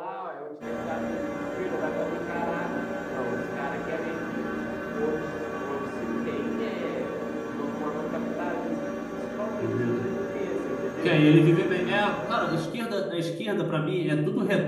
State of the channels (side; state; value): both; identical; correlation 1.00